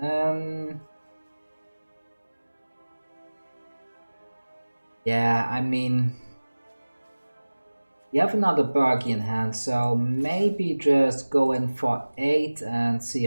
Yeah, I mean... You have another Birgi in hand, so maybe just go in for 8 and see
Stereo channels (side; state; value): both; inverted; correlation -1.00